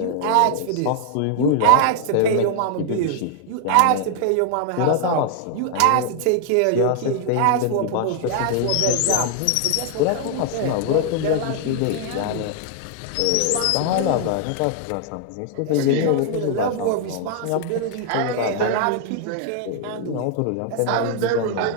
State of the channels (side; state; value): both; different; correlation 0.00